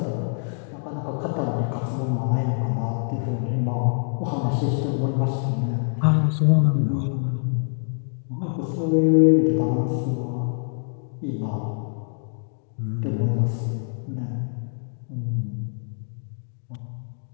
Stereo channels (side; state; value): right; silent; 62 dB below the other